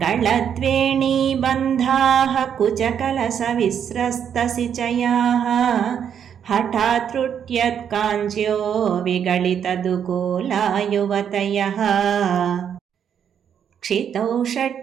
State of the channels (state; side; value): quieter; left; 8.4 dB